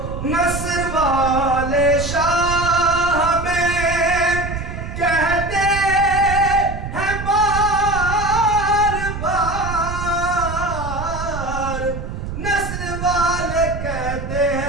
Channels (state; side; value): noise; right; rumble, 6 dB below the sound